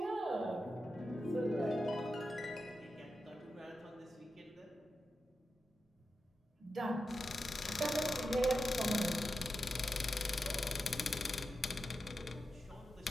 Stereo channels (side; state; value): both; normal; correlation 0.89